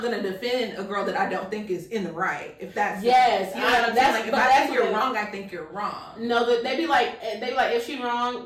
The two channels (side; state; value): both; identical; correlation 1.00